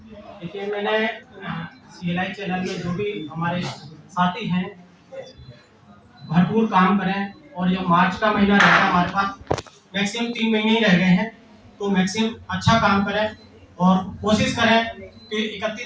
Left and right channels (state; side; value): identical; both; correlation 1.00